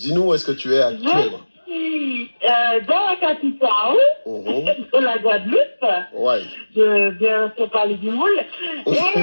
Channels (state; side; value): inverted; both; correlation -1.00